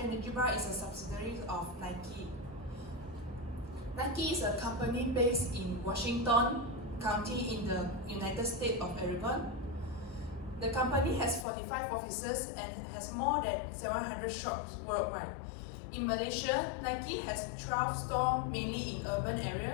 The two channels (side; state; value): right; drops out; at 11.5 s